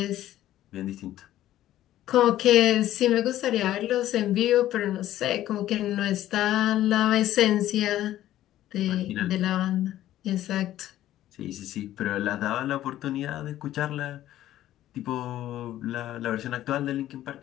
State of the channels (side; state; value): right; quieter; 13.4 dB